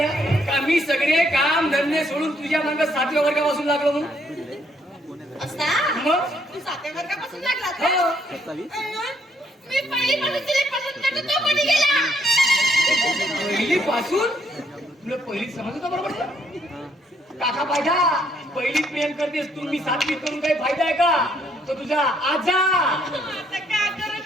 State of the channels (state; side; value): normal; both; correlation 0.70